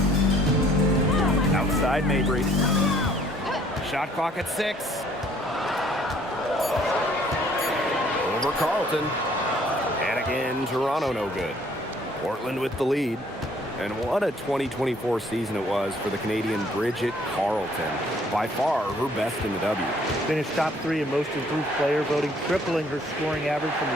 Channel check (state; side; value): normal; both; correlation 0.60